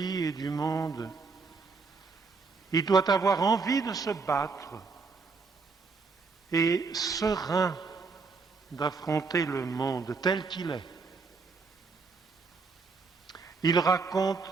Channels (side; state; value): left; quieter; 4.5 dB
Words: et du monde. Il doit avoir envie de se battre et serein d'affronter le monde tel qu'il est. Il raconte